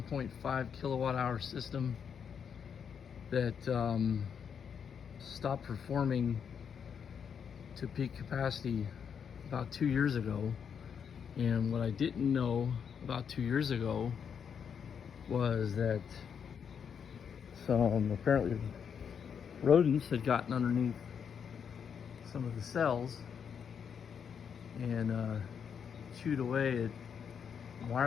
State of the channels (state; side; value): quieter; right; 7.3 dB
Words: kilowatt hour system that stopped performing to peak capacity about 2 years ago. And what I didn't know about 2 years ago was that some apparently rodents had gotten underneath some of the cells and chewed away at